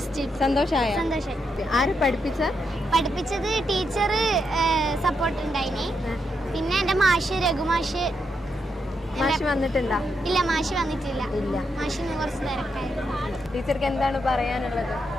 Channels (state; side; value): normal; both; correlation 0.82